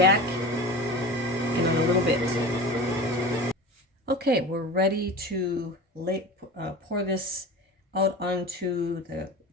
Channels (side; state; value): both; normal; correlation 0.33